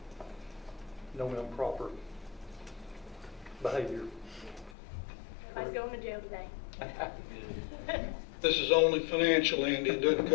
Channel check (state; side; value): drops out; right; at 4.8 s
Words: No improper behavior. Everybody's going to jail today. This is only financial, Andy. It doesn't